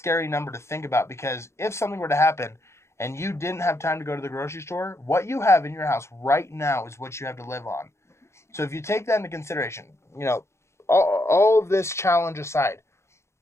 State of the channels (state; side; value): late; right; 0.13 ms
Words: number to think about, because if something were to happen and you didn't have time to go to the grocery store, what you have in your house right now is what you have to live on. So if you take that into consideration, all of this challenge aside,